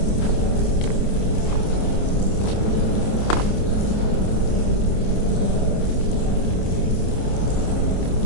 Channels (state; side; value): late; right; 28 ms